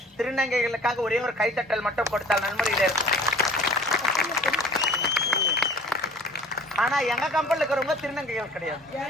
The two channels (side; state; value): both; normal; correlation 0.48